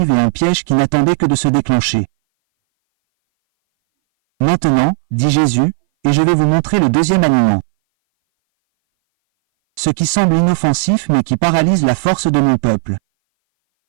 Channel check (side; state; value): left; silent; 61 dB below the other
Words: et un piège qui n'attendait que de se déclencher. Maintenant, dit Jésus, et je vais vous montrer le deuxième aliment. Ce qui semble inoffensif mais qui paralyse la force de mon peuple.